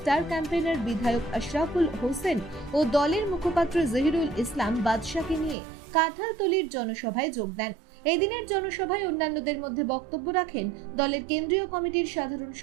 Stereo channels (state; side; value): drops out; left; at 5.6 s